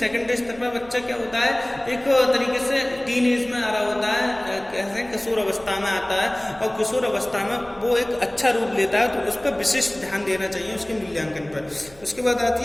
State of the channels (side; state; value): right; noise; hum, 25 dB below the sound